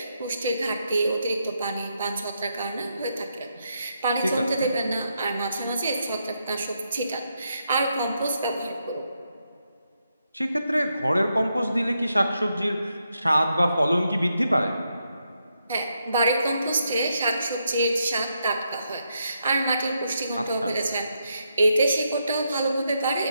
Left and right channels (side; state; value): both; inverted; correlation -0.81